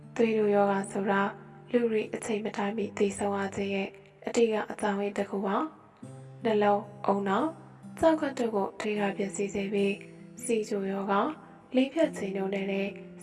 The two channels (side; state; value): both; identical; correlation 1.00